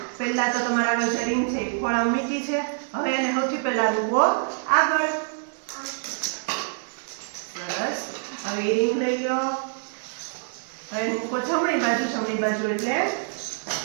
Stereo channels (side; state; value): left; silent; digital silence